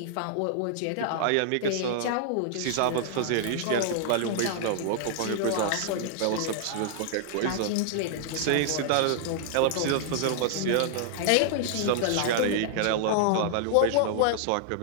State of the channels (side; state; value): both; different; correlation -0.01